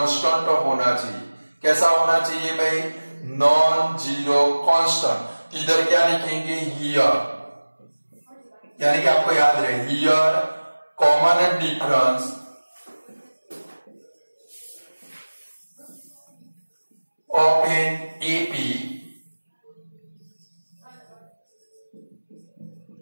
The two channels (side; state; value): both; inverted; correlation -1.00